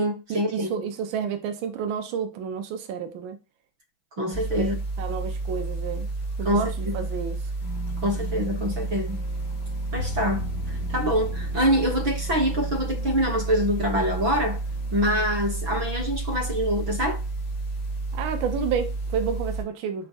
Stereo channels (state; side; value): late; left; 6.1 ms